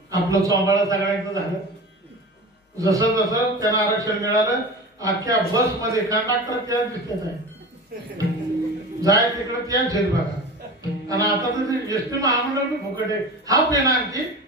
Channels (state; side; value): normal; both; correlation 0.32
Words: आपलं चोंबाळा सगळ्यांचं झालं. जसं जसं त्यांना आरक्षण मिळालं, अख्ख्या बस मध्ये कंडक्टर त्याच दिसत आहे. जाय तिकडे त्याच आहेत बघा. आणि आता तर एसटी महामंडळ बी फुकट आहे. हाफ आहे ना आणखी